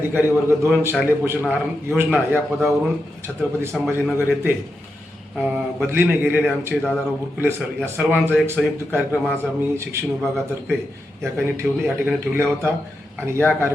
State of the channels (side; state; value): both; normal; correlation 0.87